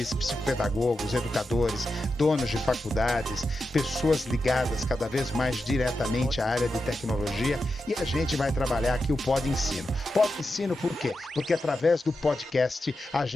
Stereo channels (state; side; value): normal; both; correlation 0.89